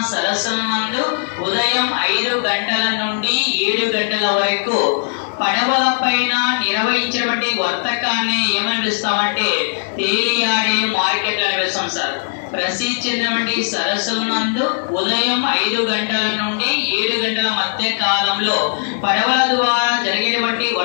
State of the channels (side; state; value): right; silent; digital silence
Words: సరస్సుల నందు ఉదయం 5 గంటల నుండి 7 గంటల వరకు పడవల పైన నిర్వహించినటువంటి వర్తకాన్ని ఏమని పిలుస్తామంటే తేలియాడే మార్కెట్లు అని పిలుస్తాం సార్. ప్రసిద్ధి చెందినటువంటి సరస్సుల నందు ఉదయం 5 గంటల నుండి 7 గంటల మధ్య కాలంలో పడవల ద్వారా జరిగినటువంటి